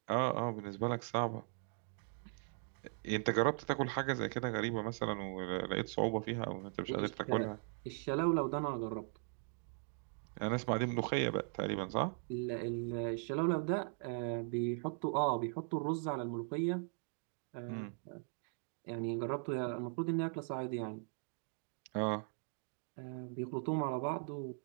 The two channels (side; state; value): left; silent; 51 dB below the other